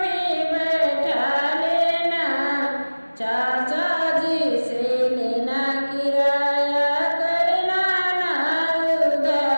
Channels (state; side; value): inverted; both; correlation -1.00